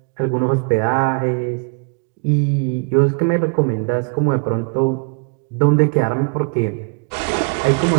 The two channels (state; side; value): quieter; left; 36.0 dB